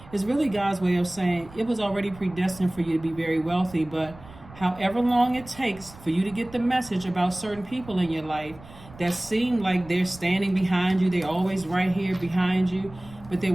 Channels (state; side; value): noise; right; rumble, 20 dB below the sound